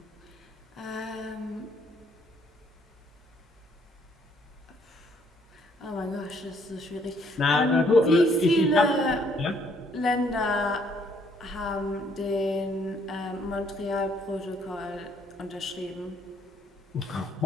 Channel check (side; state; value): both; normal; correlation 0.67